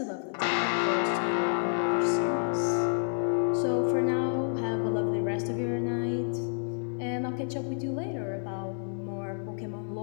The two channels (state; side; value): silent; right; digital silence